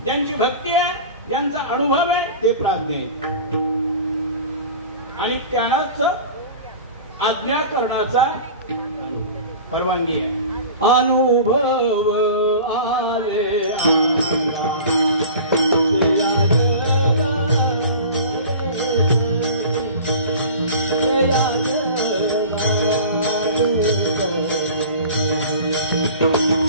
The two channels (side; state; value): both; inverted; correlation -0.38